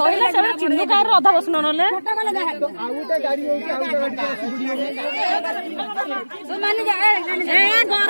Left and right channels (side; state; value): both; inverted; correlation -1.00